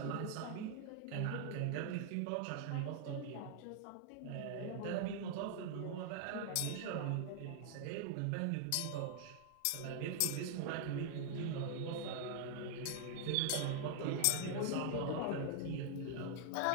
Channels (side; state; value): both; different; correlation 0.00